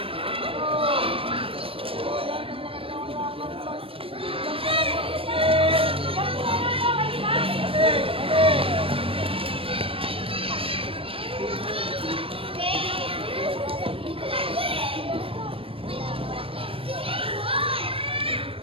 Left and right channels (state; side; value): late; left; 0.27 ms